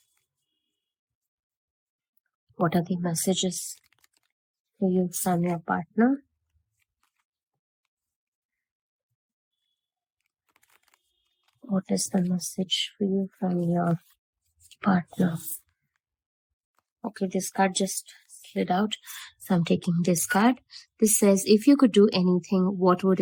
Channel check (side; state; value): both; identical; correlation 1.00